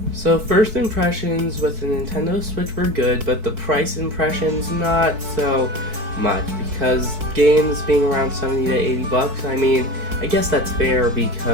So first impressions with the Nintendo Switch were good, but the price impressions not so much, because games being around 70 to 80 bucks, I mean, I guess that's fair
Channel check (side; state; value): left; late; 4.6 ms